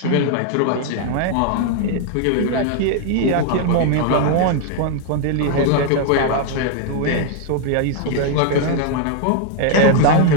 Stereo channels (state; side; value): different; both; correlation 0.00